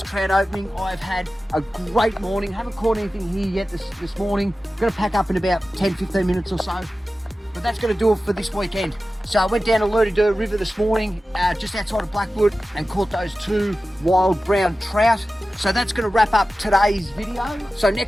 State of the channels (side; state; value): both; normal; correlation 0.95